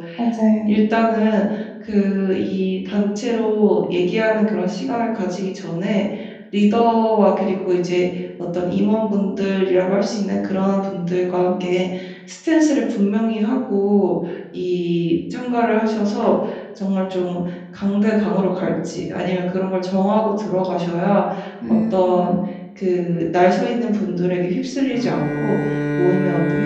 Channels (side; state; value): both; identical; correlation 1.00